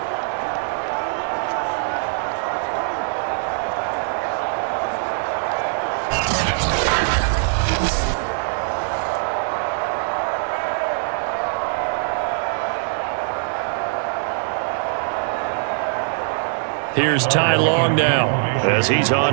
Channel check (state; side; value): silent; left; digital silence